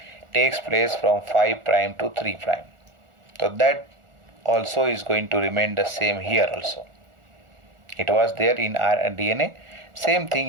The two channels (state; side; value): late; left; 1.4 ms